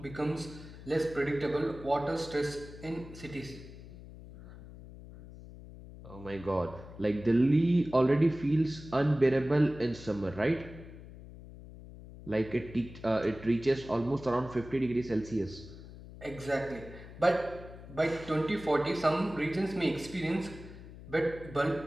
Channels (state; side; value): noise; left; hum, 15 dB below the sound